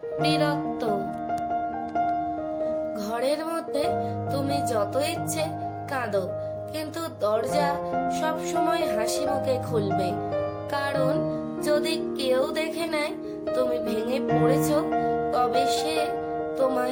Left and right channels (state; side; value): identical; both; correlation 1.00